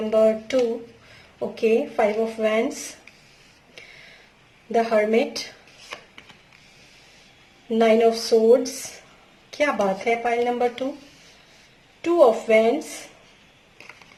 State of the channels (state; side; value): identical; both; correlation 1.00